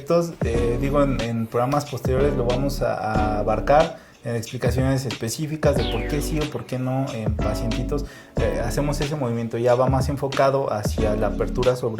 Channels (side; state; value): both; identical; correlation 1.00